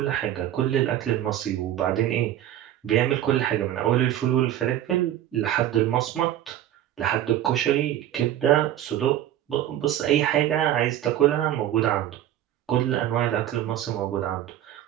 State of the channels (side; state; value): left; quieter; 12.0 dB